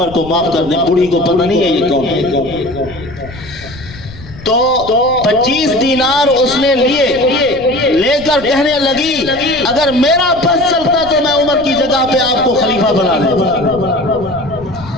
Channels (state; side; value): noise; left; rumble, 17 dB below the sound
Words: کو معاف کر دیں، بوڑھی کو پتہ نہیں ہے یہ کون ہے، تو 25 دینار اس نے لے کر کہنے لگی اگر میرا بس چلتا تو میں عمر کی جگہ پہ آپ کو خلیفہ بنا دیتا۔